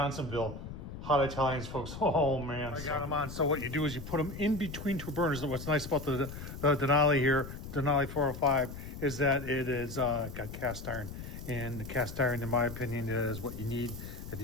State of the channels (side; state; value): left; noise; rumble, 10 dB below the sound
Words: Hot Italians, folks. Oh man. I got them on. So what you do is you put them in between two burners. What's nice about the Denali here, Denali 405, is that it is got cast iron. And the cast iron, in my opinion, is what you need if